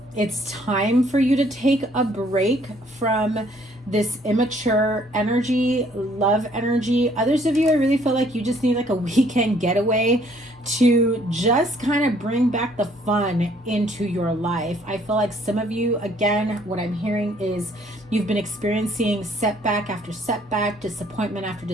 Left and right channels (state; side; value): normal; both; correlation 0.63